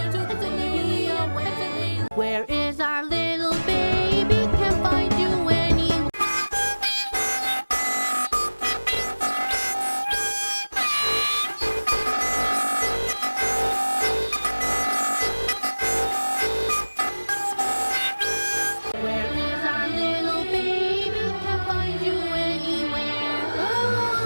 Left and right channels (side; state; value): both; inverted; correlation -1.00